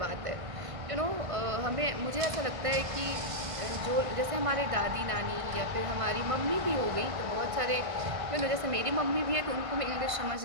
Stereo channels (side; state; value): left; late; 1.5 ms